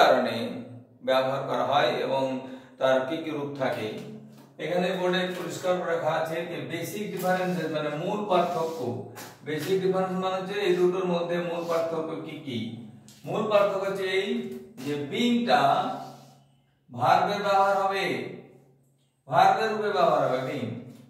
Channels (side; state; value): both; identical; correlation 1.00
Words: কারণে ব্যবহার করা হয় এবং তার কি কি রূপ থাকে। এখানে বোর্ডে পরিষ্কার করে লেখা আছে যে বেসিক ডিফারেন্সেস মানে মূল পার্থক্য। বেসিক ডিফারেন্স মানে হচ্ছে এই দুটোর মধ্যে মূল পার্থক্য কি কি। মূল পার্থক্য হচ্ছে এই যে বিংটা ভার্বের ব্যবহার হবে, ভার্বের রূপে ব্যবহার হবে বিং,